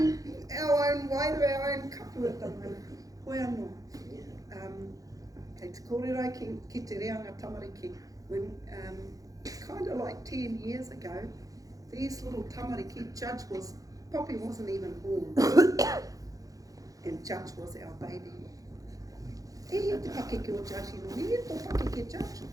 waira, our own kapu at the moment. Koe anō. Kei te kōrero ki te reanga tamariki. When kind of like 10 years ago, these little tamariki, Poppy wasn't even born. And Judge was our baby. E he te pakeke o Judge ino, e he tō pakeke Judge.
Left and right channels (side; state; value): left; late; 0.17 ms